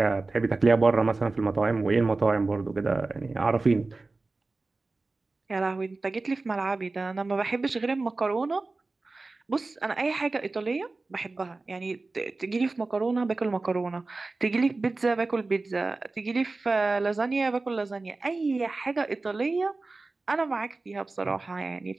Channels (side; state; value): left; quieter; 3.5 dB